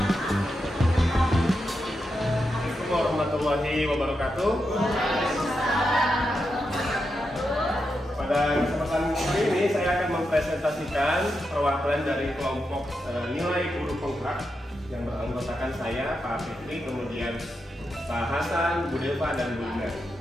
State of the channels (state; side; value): normal; both; correlation 0.86